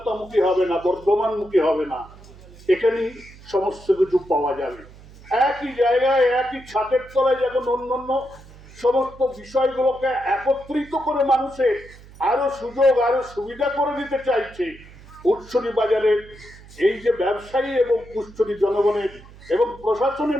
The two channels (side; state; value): right; noise; hum, 21 dB below the sound